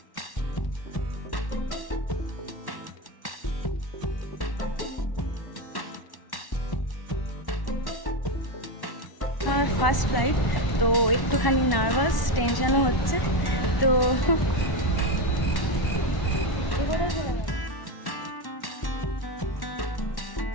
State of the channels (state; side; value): late; right; 1.1 ms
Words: আমার ফার্স্ট ফ্লাইট, তো একটুখানি নার্ভাস, টেনশনও হচ্ছে। তো